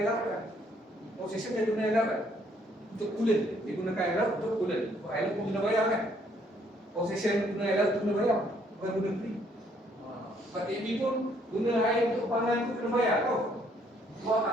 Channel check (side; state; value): both; normal; correlation 0.67